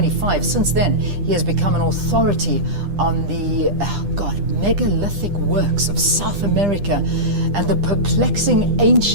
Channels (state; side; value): late; left; 10 ms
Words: Since then, he has become an authority on the, megalithic works of South America and the perplexing,